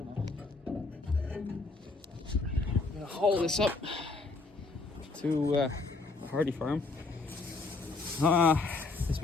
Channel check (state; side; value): quieter; right; 3.7 dB